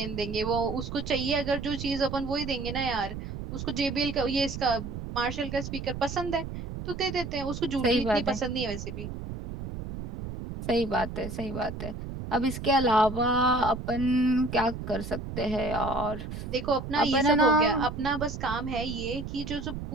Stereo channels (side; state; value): right; noise; rumble, 7 dB below the sound